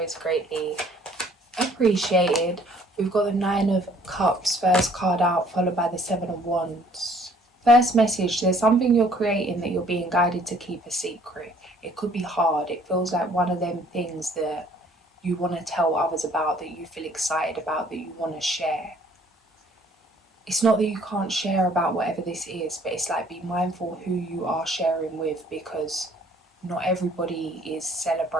greatly appreciated. We've got the Nine of Cups, first card out, followed by the Seven of Wands. First message, there's something you're creating that you're being guided to keep a secret. It could be hard. It feels like one of them things that you want to tell others about, that you feel excited about, that you want to share. It's not that you can't share about whatever this is, but it's like, be mindful who you are sharing with, because not everybody is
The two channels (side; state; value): both; normal; correlation 0.58